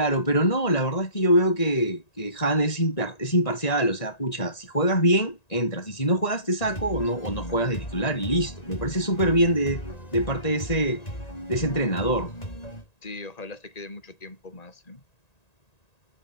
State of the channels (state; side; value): late; right; 1.9 ms